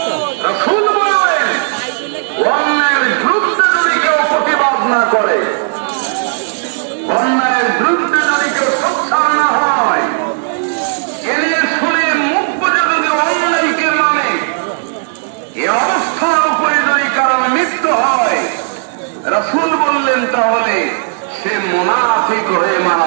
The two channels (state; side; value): silent; left; digital silence